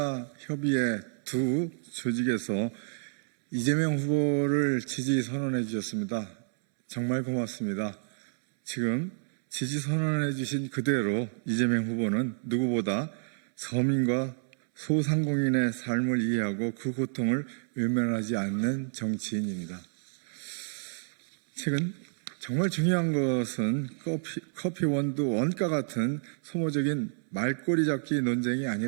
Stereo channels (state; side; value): silent; left; 58 dB below the other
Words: 협의회 두 조직에서 이재명 후보를 지지 선언해 주셨습니다. 정말 고맙습니다. 지금 지지 선언해 주신 그대로 이재명 후보는 누구보다 서민과 소상공인의 삶을 이해하고 그 고통을 외면하지 않는 정치인입니다. 최근 정말 중요한 것은 커피 원두 원가 같은 소모적인 말꼬리 잡기 논쟁이